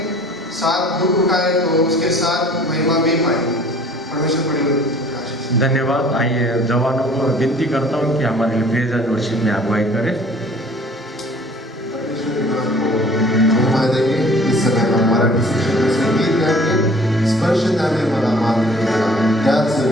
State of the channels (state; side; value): normal; both; correlation 0.52